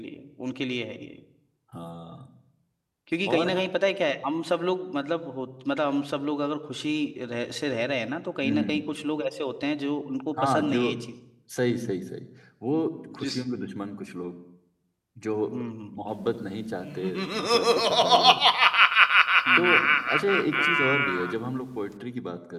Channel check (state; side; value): identical; both; correlation 1.00